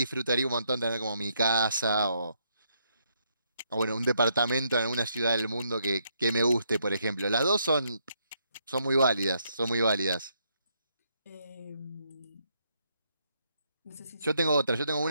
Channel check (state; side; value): inverted; both; correlation -0.75